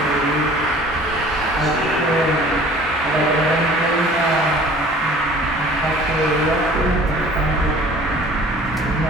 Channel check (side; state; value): both; normal; correlation 0.48